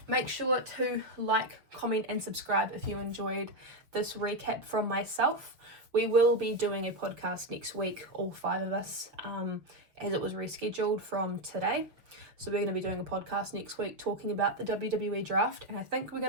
make sure to like, comment and subscribe if you enjoyed this recap from myself. We will be doing a podcast next week, all 5 of us, as it was rescheduled from today. So we're going to be doing a podcast next week talking about the WWE draft. And I think we're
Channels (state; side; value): late; left; 6.6 ms